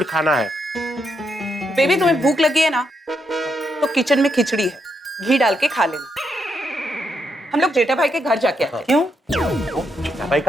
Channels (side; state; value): both; normal; correlation 0.80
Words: खाना है। बेबी तुम्हें भूख लगी है ना, तो किचन में खिचड़ी है, घी डाल के खा लेना। हम लोग जेठा भाई के घर जाके आते हैं। क्यों? जेठा भाई